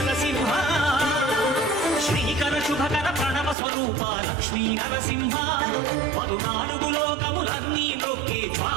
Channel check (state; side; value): drops out; left; at 3.6 s